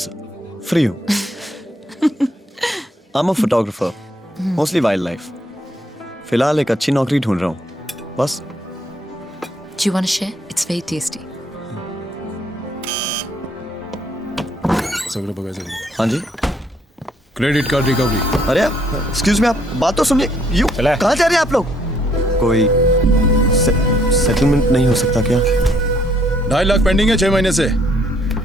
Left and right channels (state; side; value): normal; both; correlation 0.68